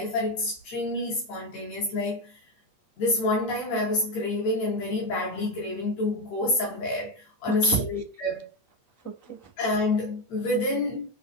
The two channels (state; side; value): late; right; 8.4 ms